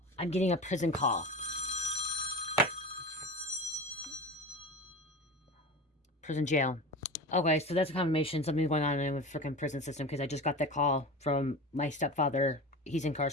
I'm getting a prison call. Prison jail. Okay, so that's a confirmation. Something's going on in the freaking prison system because I just got that call from my stepfather. He's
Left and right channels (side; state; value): both; normal; correlation 0.30